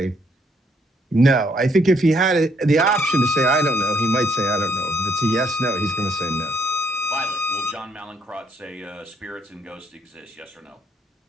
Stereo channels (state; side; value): normal; both; correlation 0.70